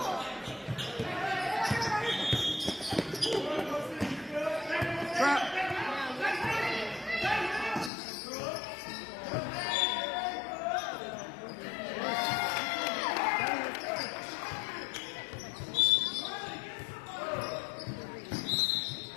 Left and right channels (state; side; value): drops out; right; at 7.9 s